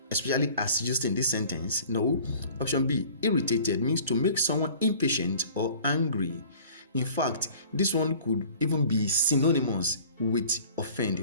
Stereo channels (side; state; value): both; inverted; correlation -0.48